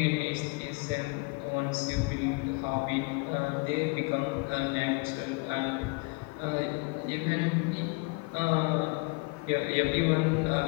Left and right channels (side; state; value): right; quieter; 28.6 dB